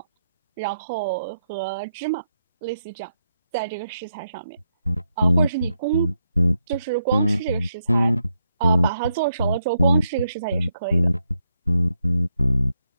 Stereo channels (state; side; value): inverted; both; correlation -0.81